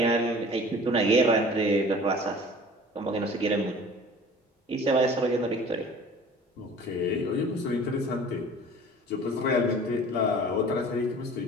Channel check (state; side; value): normal; both; correlation 0.45